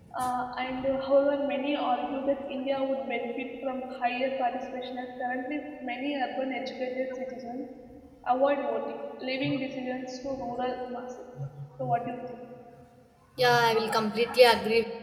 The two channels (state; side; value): identical; both; correlation 1.00